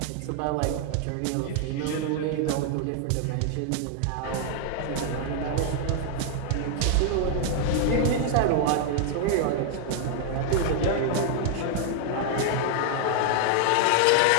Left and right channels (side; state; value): both; different; correlation 0.00